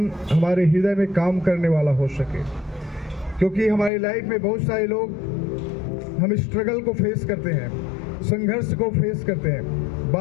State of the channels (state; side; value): drops out; right; at 3.9 s